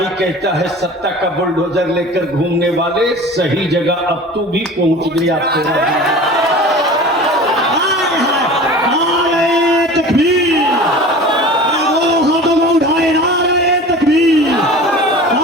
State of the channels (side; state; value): both; normal; correlation 0.39